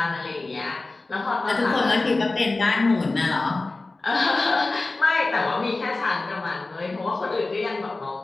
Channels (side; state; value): right; quieter; 3.3 dB